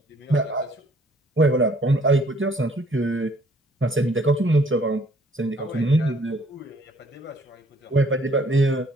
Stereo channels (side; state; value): both; normal; correlation 0.61